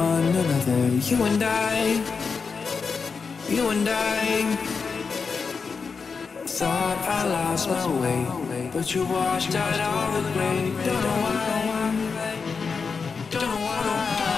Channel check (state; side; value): quieter; right; 5.2 dB